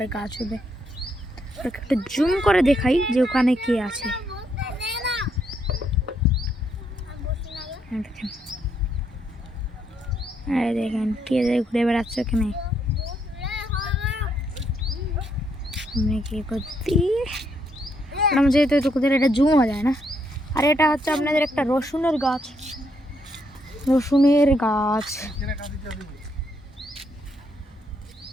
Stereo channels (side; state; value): both; normal; correlation 0.75